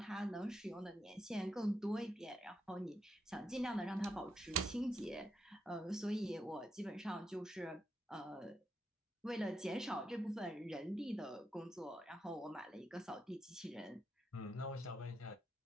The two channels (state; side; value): normal; both; correlation 0.83